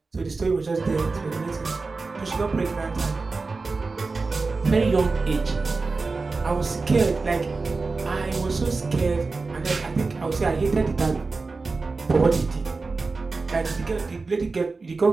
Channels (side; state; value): left; quieter; 4.0 dB